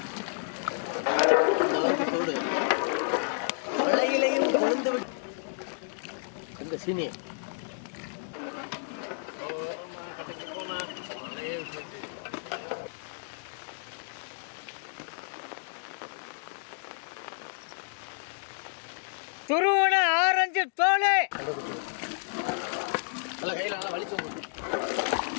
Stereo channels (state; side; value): silent; right; digital silence